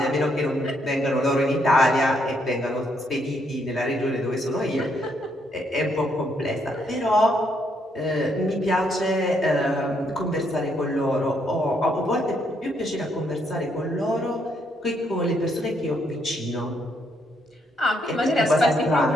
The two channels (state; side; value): normal; both; correlation 0.74